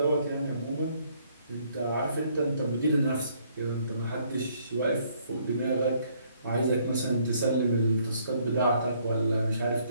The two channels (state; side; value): inverted; both; correlation -0.66